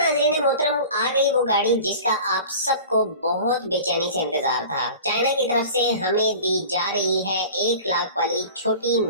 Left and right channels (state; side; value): inverted; both; correlation -0.39